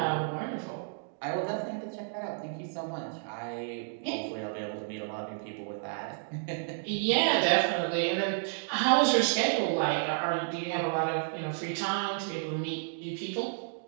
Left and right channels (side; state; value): left; silent; digital silence